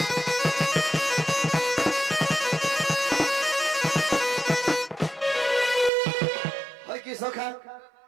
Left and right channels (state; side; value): drops out; left; at 5.9 s